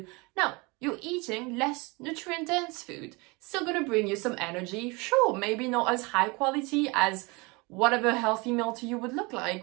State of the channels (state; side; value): quieter; left; 26.8 dB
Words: No, you're eating less nutrient-dense food. Still gonna bring you some energy. Sure, maybe not as high quality as whatever healthy meal to you